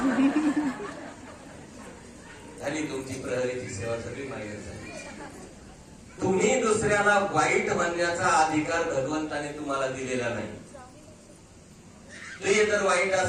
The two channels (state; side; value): identical; both; correlation 1.00